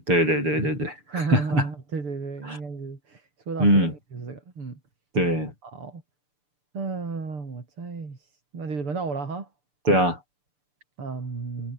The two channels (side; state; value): left; late; 6.8 ms